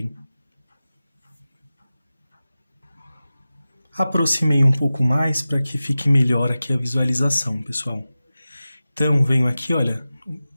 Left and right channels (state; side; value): inverted; both; correlation -0.95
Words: Aproximei um pouco mais para que fique melhor aqui a visualização, pessoal. Então, venho aqui, olha,